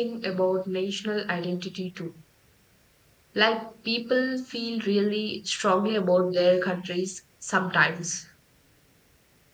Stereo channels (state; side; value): identical; both; correlation 1.00